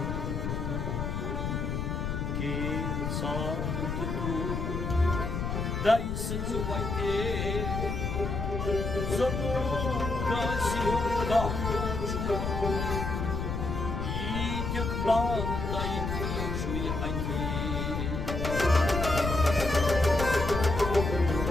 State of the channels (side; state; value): left; noise; rumble, 2 dB below the sound